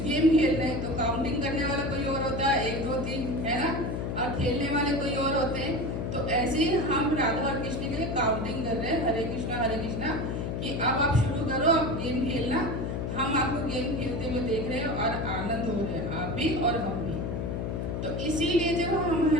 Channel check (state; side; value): noise; left; hum, 2 dB below the sound